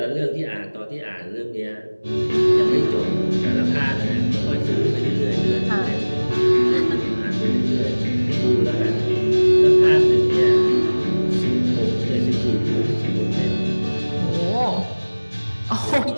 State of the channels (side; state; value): both; inverted; correlation -1.00